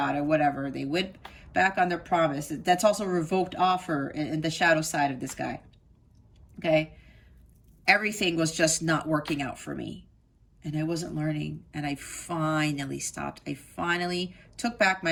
it, whatever. They went back on their promise. That's also a revoked offer in the shadow side of this guy. Okay? everything was just not working out for me. And I wasn't learning. And I finally stopped. I finally took back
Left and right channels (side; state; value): both; identical; correlation 1.00